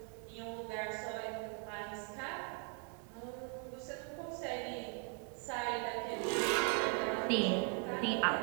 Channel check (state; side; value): quieter; left; 36.9 dB